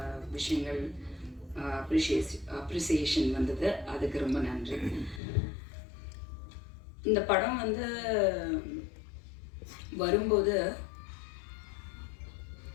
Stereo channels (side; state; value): right; drops out; at 5.2 s